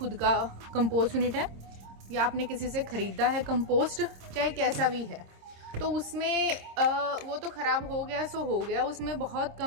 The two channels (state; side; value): late; left; 26 ms